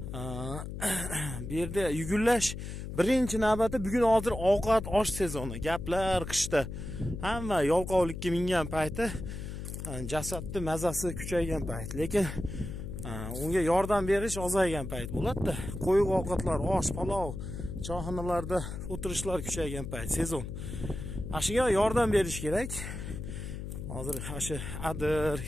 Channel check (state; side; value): noise; left; hum, 7 dB below the sound